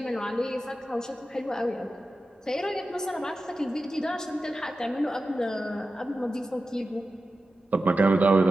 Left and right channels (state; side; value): normal; both; correlation 0.93